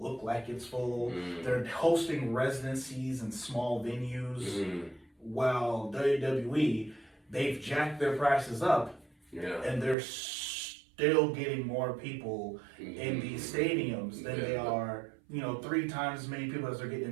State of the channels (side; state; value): left; drops out; at 10.0 s